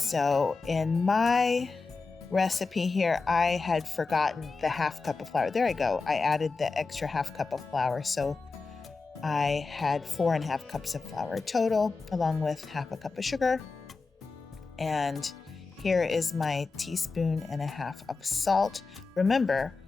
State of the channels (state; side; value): quieter; right; 4.2 dB